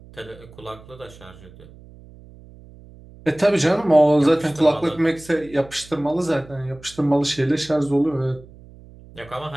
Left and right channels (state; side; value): noise; right; hum, 21 dB below the sound